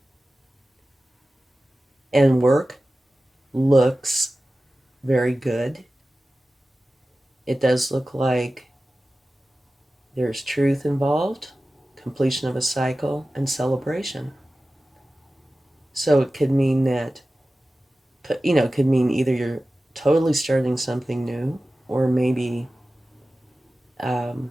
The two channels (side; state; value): both; normal; correlation 0.95